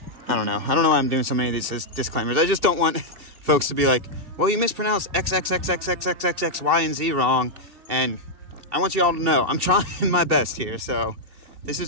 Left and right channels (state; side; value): late; left; 2.6 ms